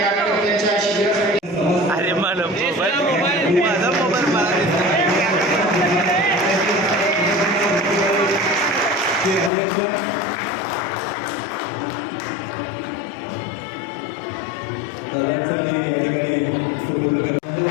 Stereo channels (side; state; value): right; drops out; at 9.5 s